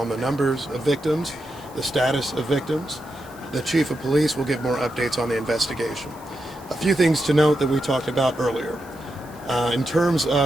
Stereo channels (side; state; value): right; noise; hiss, 24 dB below the sound